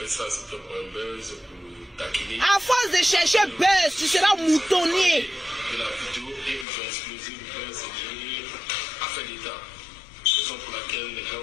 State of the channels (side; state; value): right; drops out; at 6.7 s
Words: ça, c'était pour un buzz, pour taquiner. À force de chercher buzz, tu seras moutonnier. De la vidéo et ils ont explosé le buzz, c'est affaire d'État. Raison pour laquelle les